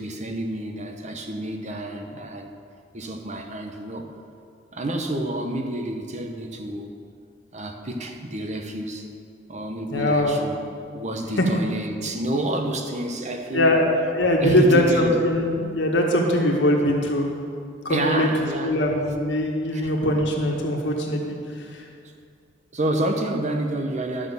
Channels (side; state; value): both; normal; correlation 0.32